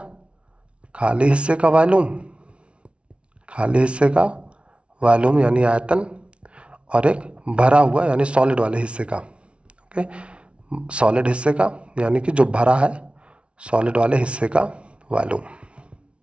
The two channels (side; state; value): left; late; 0.060 ms